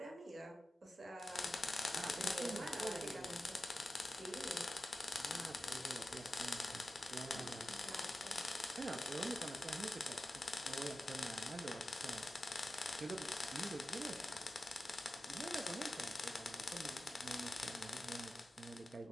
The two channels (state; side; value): normal; both; correlation 0.93